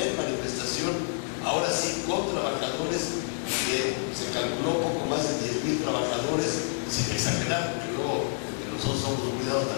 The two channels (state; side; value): silent; right; 59 dB below the other